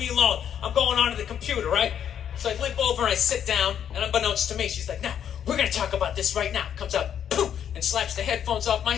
alone. I'm going onto the computer, right? So I limp over and I sit down, and unbeknownst to me, she's like, no, we're going to talk about this right now. Comes out, poof, and slaps the headphones off my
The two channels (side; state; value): right; quieter; 9.1 dB